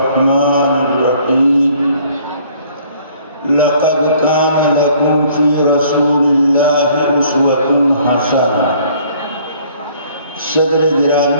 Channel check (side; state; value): both; inverted; correlation -0.58